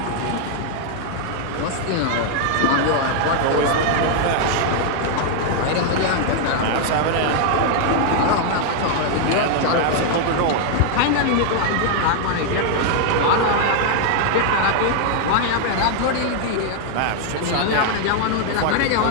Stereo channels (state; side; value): different; both; correlation 0.00